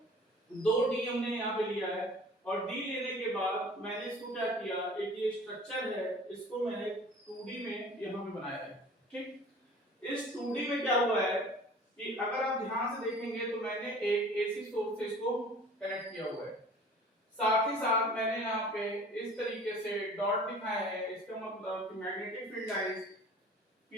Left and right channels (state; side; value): normal; both; correlation 0.46